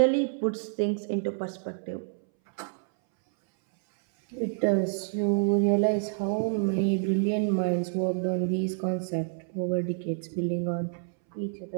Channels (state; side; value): silent; left; 59 dB below the other